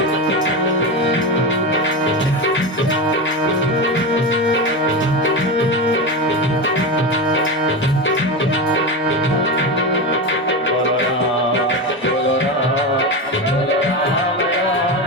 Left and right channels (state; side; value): normal; both; correlation 0.19